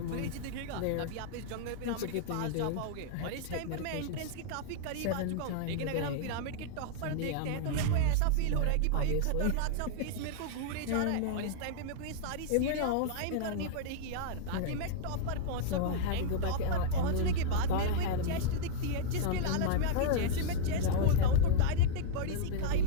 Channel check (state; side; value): different; both; correlation -0.01